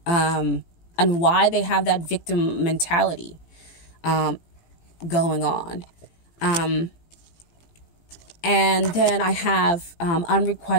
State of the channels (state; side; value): late; right; 18 ms